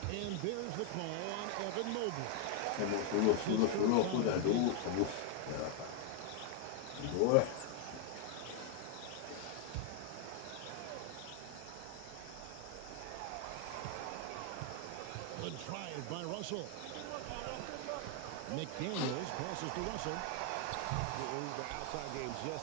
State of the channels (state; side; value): different; both; correlation 0.00